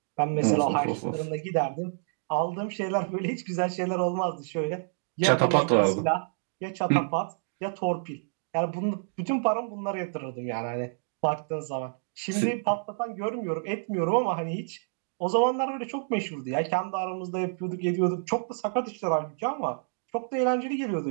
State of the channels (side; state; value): left; silent; digital silence